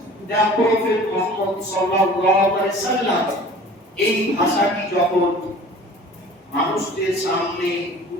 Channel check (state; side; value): normal; both; correlation 0.45